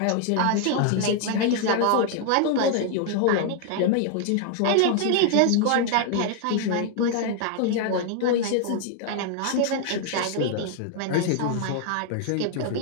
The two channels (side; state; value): both; different; correlation 0.00